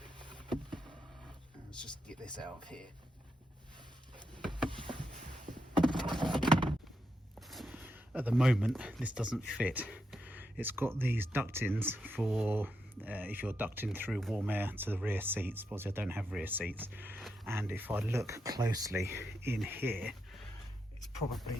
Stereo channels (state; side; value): normal; both; correlation 0.84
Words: Let's just get this out of here. At the moment, this doesn't fit. It's got these ductings for if you're ducting through warm air to the rear seats. Obviously, I don't have rear seats, and if I look closely in here, it's probably